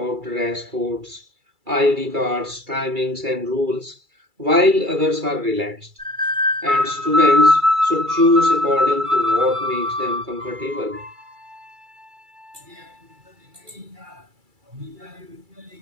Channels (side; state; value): left; late; 2.3 ms